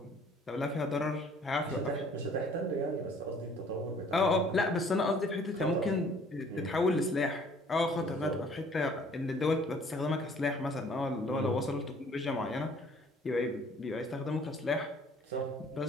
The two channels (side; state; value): both; normal; correlation 0.56